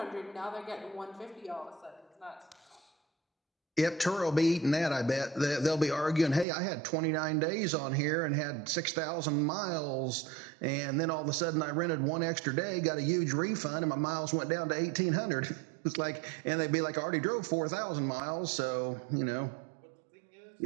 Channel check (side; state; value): left; drops out; at 6.5 s